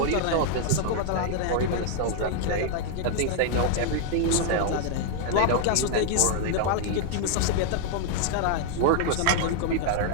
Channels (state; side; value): different; both; correlation 0.00